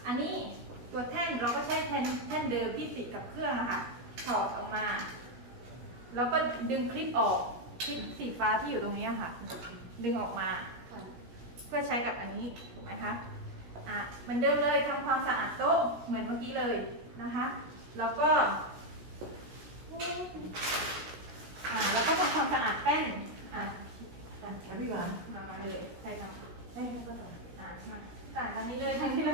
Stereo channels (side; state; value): left; late; 17 ms